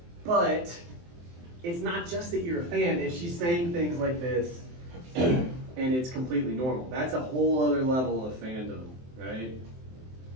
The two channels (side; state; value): left; late; 23 ms